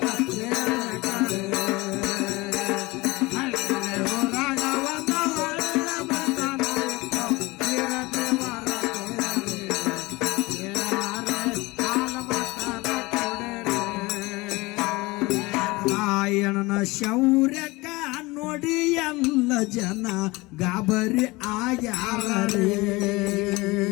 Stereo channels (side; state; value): right; quieter; 22.6 dB